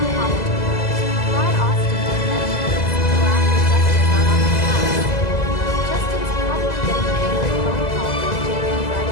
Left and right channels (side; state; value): right; late; 2.0 ms